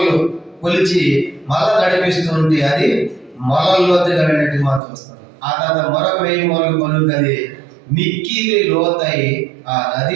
కొలిచి మళ్ళా నడిపిస్తూ ఉంటే అది మొలల లోతుగా వెళ్ళినట్టు మనం చూస్తాం. ఆ తర్వాత మరొక 1000 మూరలు కొలుకు అది మిక్కిలి లోతై ఆ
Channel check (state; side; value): drops out; left; at 4.8 s